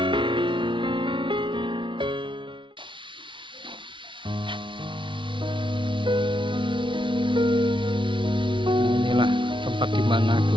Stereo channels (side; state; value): left; late; 0.24 ms